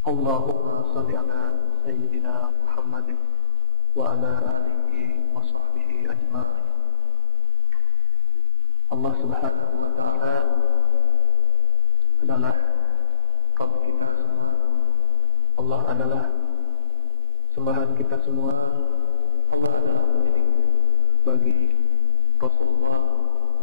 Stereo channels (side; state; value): both; inverted; correlation -0.38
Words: Allahumma shalli ala sayyidina Muhammadin wa ala alihi wa sahbihi ajma'in. Allah Subhanahu wa ta'ala adalah Rabb kita semua. Allah adalah sembahan kita semua. Allah adalah pendidik bagi Rasulullah